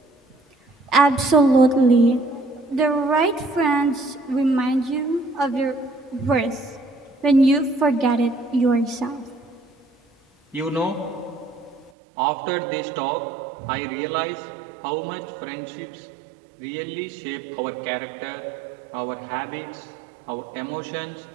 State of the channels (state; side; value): drops out; left; at 11.9 s